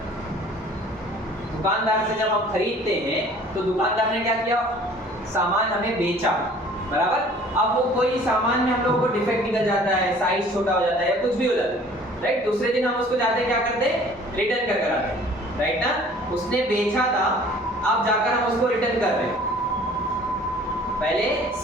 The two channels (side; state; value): both; normal; correlation 0.51